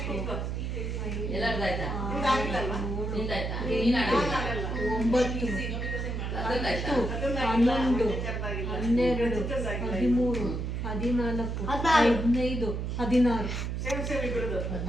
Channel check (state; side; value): noise; right; hum, 3 dB below the sound